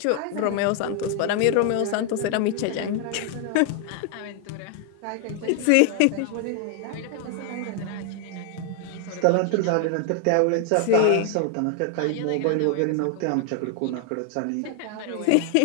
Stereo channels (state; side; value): different; both; correlation 0.00